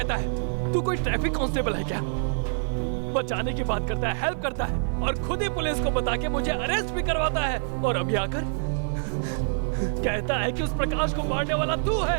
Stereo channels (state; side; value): silent; left; 61 dB below the other